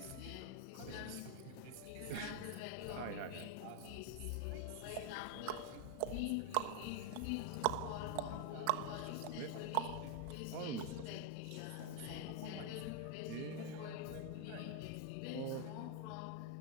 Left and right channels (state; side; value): different; both; correlation 0.00